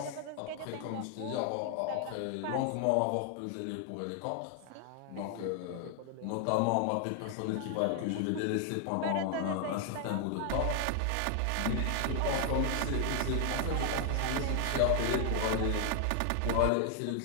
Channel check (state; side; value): different; both; correlation 0.00